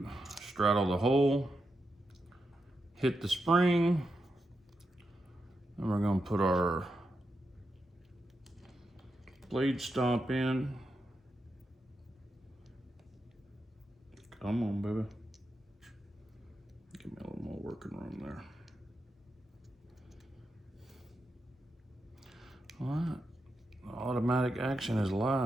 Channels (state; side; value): normal; both; correlation 0.86